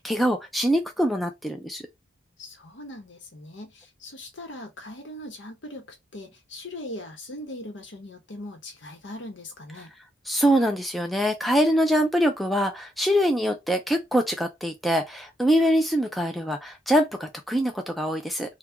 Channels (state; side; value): normal; both; correlation 0.80